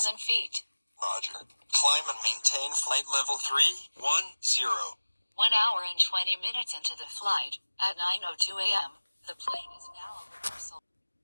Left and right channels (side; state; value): both; inverted; correlation -1.00